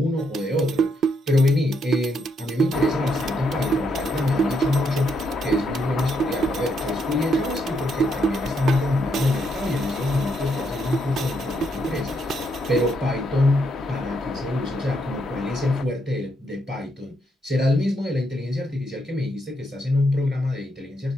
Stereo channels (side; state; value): both; normal; correlation 0.76